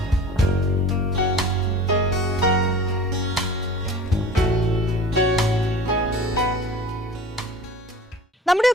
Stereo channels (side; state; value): both; normal; correlation 0.41